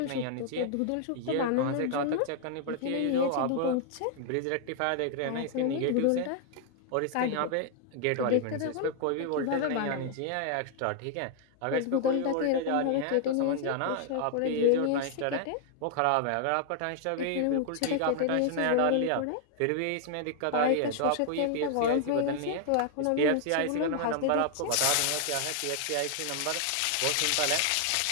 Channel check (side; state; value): both; different; correlation 0.00